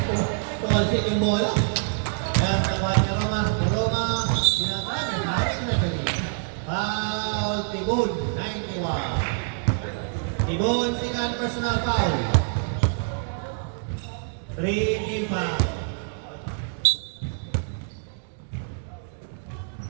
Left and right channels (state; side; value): silent; left; digital silence